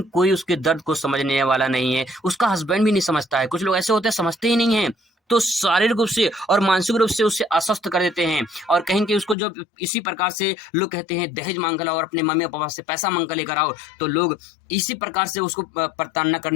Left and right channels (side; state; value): right; drops out; at 9.3 s